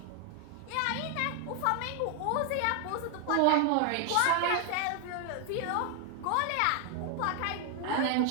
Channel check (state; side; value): different; both; correlation 0.00